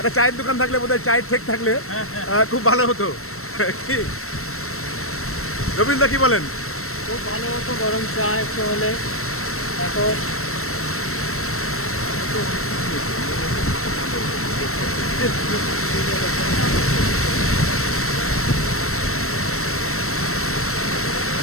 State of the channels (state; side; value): late; right; 0.63 ms